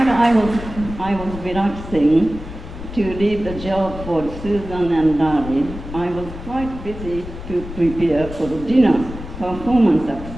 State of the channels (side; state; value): left; noise; rumble, 11 dB below the sound